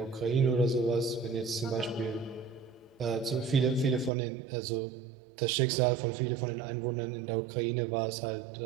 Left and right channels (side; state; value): left; drops out; at 4.1 s